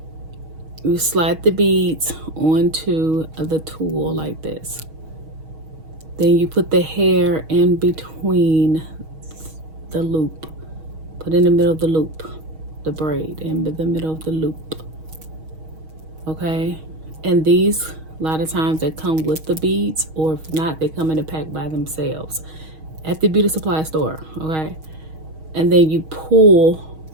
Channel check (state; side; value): late; left; 6.3 ms